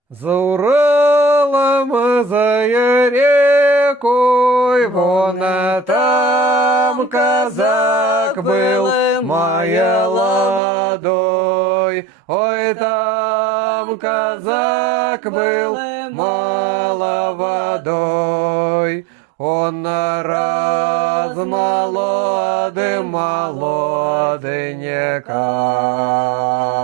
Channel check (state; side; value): drops out; left; at 10.6 s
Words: За Уралом, за рекой, вон там казак был, моя ладой. Ой, там казак был, молодой. Он раз